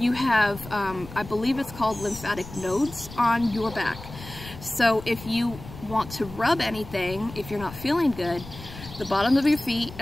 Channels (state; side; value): noise; left; rumble, 15 dB below the sound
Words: have, I believe it's called lymphatic nodes on your back. So if you want to rub anything, if you're not feeling good, the bottom of your feet